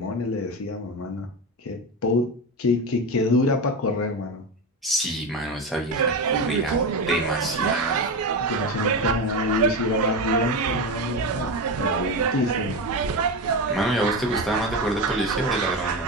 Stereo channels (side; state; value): both; normal; correlation 0.18